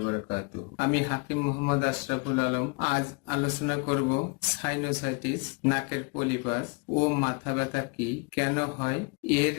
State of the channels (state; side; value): quieter; right; 31.3 dB